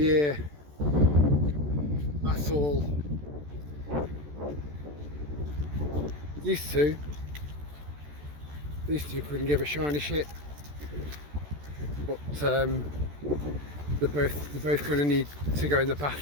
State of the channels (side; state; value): left; late; 14 ms